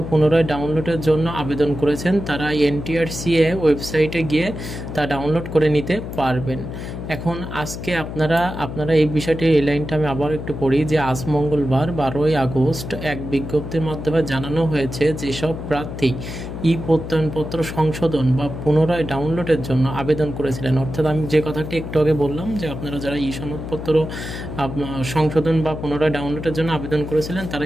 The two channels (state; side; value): noise; left; hum, 8 dB below the sound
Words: পুনরায় ডাউনলোডের জন্য আবেদন করেছেন তারা NTRCA ওয়েবসাইটে গিয়ে তা ডাউনলোড করে নিতে পারবেন। এখন আজকে আপনারা এই বিষয়টি, এই লাইনটা আমি আবার একটু পড়ি যে আজ মঙ্গলবার 12ই আগস্ট এক বিজ্ঞপ্তির মাধ্যমে জানানো হয়েছে যেসব প্রার্থী প্রত্যয়নপত্র সংশোধন বা পুনরায় ডাউনলোডের জন্য আবেদন করেছিলেন, অর্থাৎ আমি যে কথাটি একটু আগে বললাম যে আপনারা যারা সনদপত্র সংশোধন বা পুনরায় ডাউনলোডের জন্য আবেদন করেছিলেন তারা